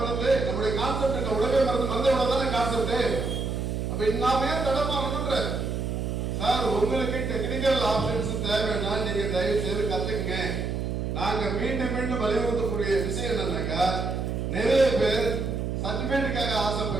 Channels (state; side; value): noise; right; hum, 2 dB below the sound